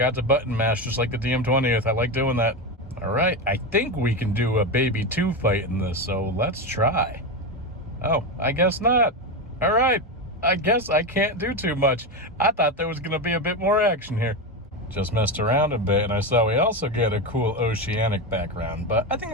to button mash just like the DM20th. I like doing that. All right, I think we can do a baby 2 fight in this, so let's try. Oh, I guess not. All right, I guess I can't do too much. I thought there was gonna be a bit more action here. Just messed around a bit, and I saw we also get a cool oceanic background, but I think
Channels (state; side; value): normal; both; correlation 0.15